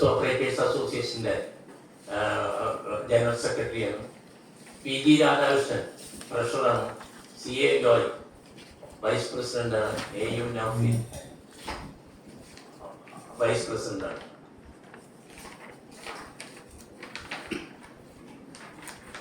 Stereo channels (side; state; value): both; identical; correlation 1.00